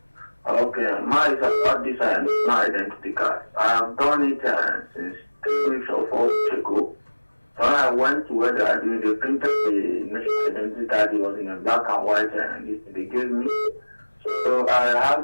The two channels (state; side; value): inverted; both; correlation -1.00